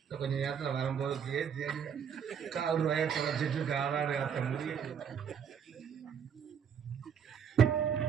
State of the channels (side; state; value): left; quieter; 7.6 dB